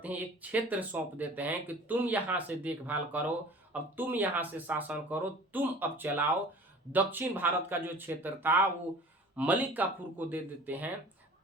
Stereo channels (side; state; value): both; normal; correlation 0.44